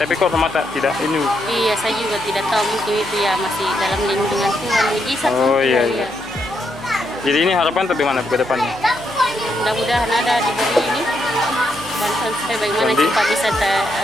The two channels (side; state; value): left; noise; hum, 24 dB below the sound